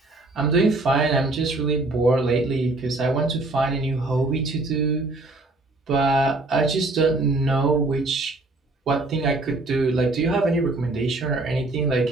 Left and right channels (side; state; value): left; quieter; 3.0 dB